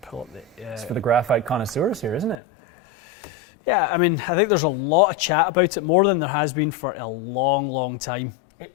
pull up the. It's for the graphite connoisseurs here, isn't it? Yeah, I mean, I think there's a lot of chat about it, more than there has been for a long, long time.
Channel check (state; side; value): drops out; right; at 2.4 s